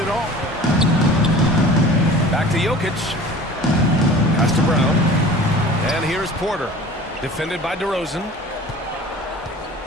all. Back to Jokic. Pass to Brown. And here's Porter. Defended by DeRozan.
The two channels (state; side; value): normal; both; correlation 0.42